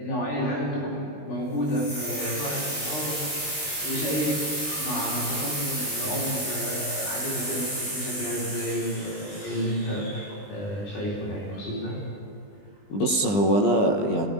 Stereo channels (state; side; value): late; right; 20 ms